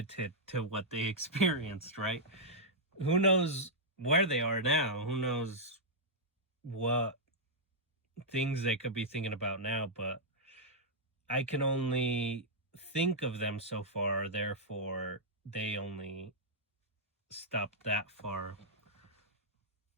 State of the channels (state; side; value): normal; both; correlation -0.08